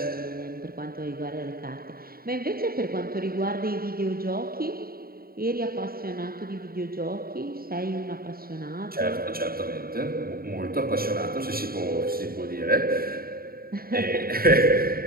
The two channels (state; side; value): late; left; 0.43 ms